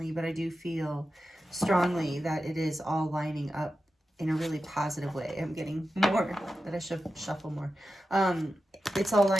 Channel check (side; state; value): both; normal; correlation 0.92